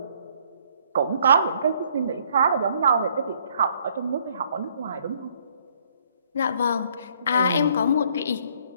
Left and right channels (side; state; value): both; inverted; correlation -0.64